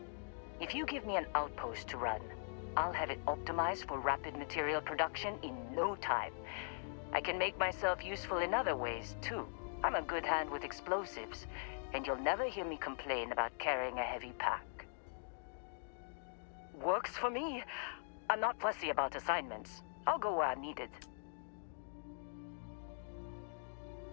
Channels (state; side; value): silent; right; digital silence